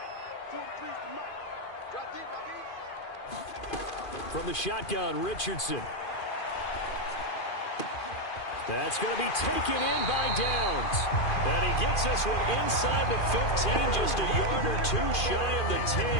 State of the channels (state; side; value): late; right; 2.4 ms